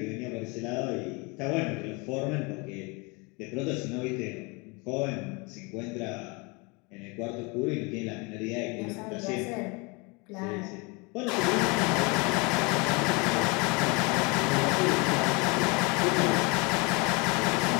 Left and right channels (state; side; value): quieter; right; 28.1 dB